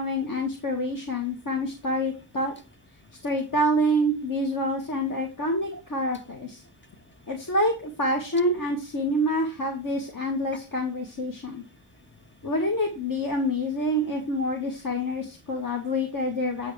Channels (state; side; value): normal; both; correlation 0.12